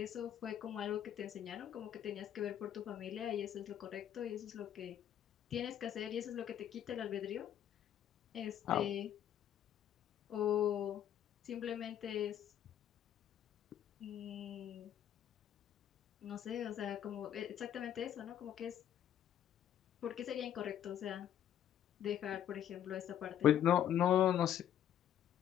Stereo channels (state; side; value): quieter; right; 10.4 dB